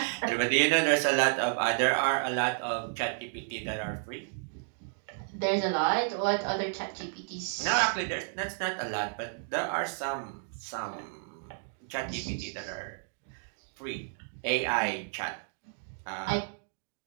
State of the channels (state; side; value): silent; left; digital silence